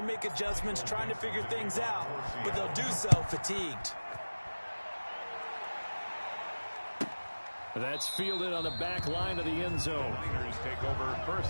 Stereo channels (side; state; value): both; inverted; correlation -1.00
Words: make adjustments, trying to figure things out, but they'll do so fatigued. That's fielded on the back line of the end zone. Niners take over